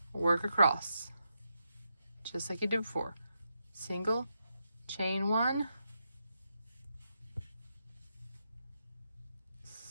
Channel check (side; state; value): both; inverted; correlation -0.84